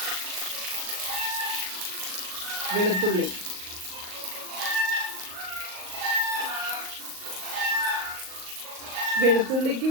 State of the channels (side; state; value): left; late; 38 ms